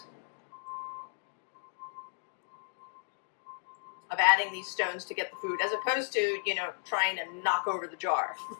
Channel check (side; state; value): right; silent; digital silence